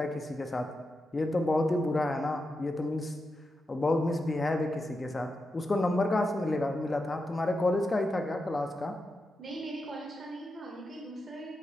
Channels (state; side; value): normal; both; correlation 0.88